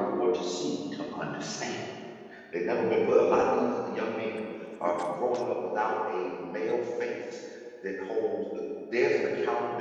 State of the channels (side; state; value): both; identical; correlation 1.00